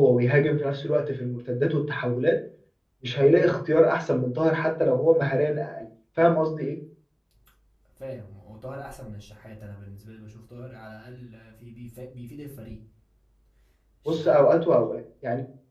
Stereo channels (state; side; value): identical; both; correlation 1.00